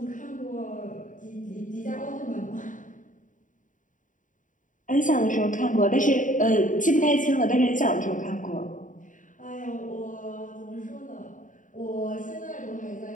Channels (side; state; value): right; late; 0.38 ms